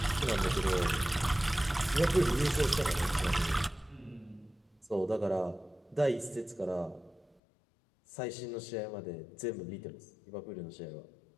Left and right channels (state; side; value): drops out; right; at 7.4 s